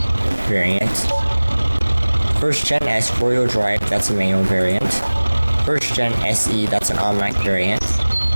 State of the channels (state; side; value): inverted; both; correlation -1.00